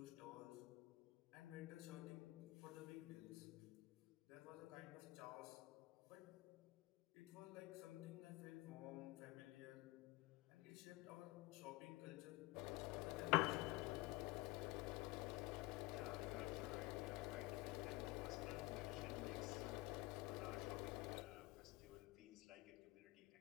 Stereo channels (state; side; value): quieter; right; 21.2 dB